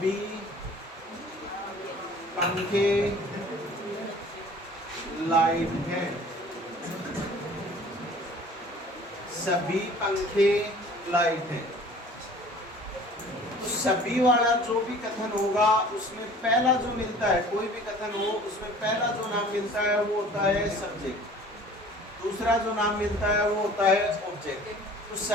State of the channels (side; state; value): both; normal; correlation 0.48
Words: पंखे लाइट हैं, सभी पंखे लाइट हैं। तो सभी वाला जो भी कथन होगा उसमें पहला जो मिलता है, कोई भी कथन हो उसमें पहला जो नाम मिलता है वो होता है सब्जेक्ट, दूसरा जो नाम मिलता है वो होता है ऑब्जेक्ट। तो